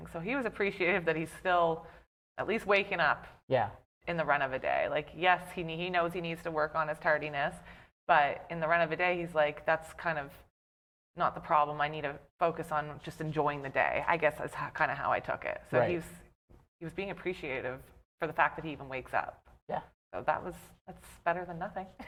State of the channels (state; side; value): identical; both; correlation 1.00